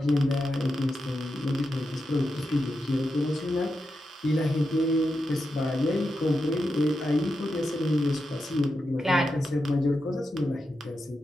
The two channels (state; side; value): normal; both; correlation 0.88